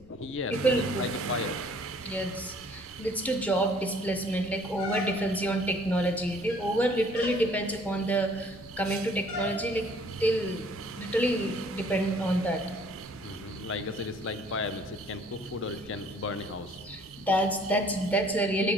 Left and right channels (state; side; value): noise; right; rumble, 26 dB below the sound